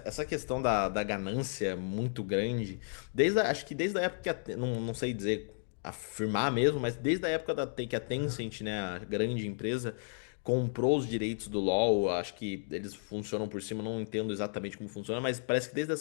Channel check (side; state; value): right; silent; digital silence